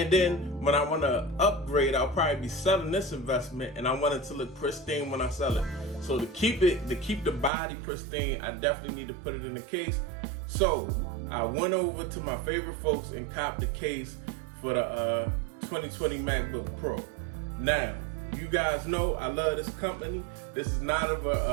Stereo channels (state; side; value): drops out; left; at 7.5 s